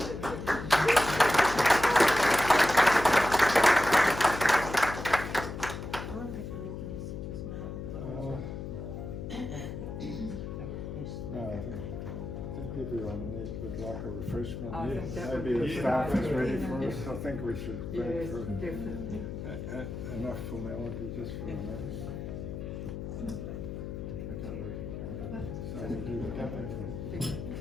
No, I think would like a refreshment. I think that would Maybe be the staff is nice. ready for us. I think we should break Yes, for definitely. enough formality just for a moment. So we'll do the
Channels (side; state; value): left; noise; hum, 7 dB below the sound